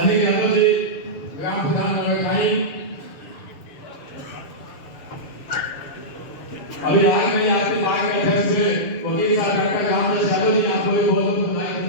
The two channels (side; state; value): right; late; 7.0 ms